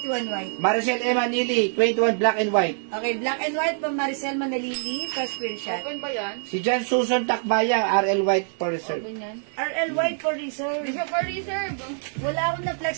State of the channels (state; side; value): silent; left; 62 dB below the other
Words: white. Maricel Emma Nili, 21 black and white. Okay, black and white, Ma'am Maricel Manalili, first screenshot. Open ba yan? Si Jan Susan Takbaya, RL white for reserve. Open yan. RL white for reserve. Hindi siya for reserve. Wala akong